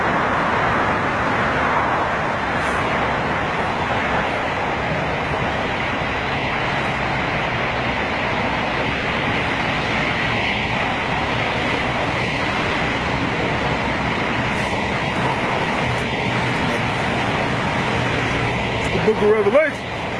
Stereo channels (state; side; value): identical; both; correlation 1.00